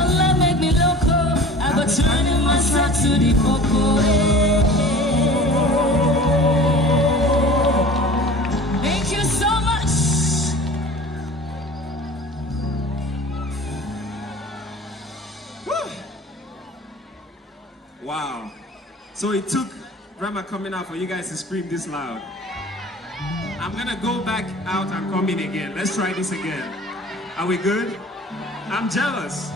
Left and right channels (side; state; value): both; normal; correlation 0.41